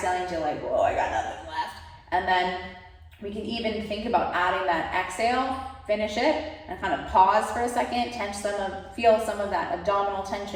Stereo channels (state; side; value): identical; both; correlation 1.00